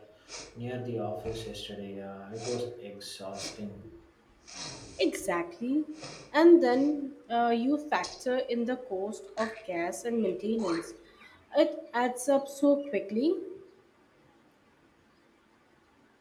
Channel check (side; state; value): both; identical; correlation 1.00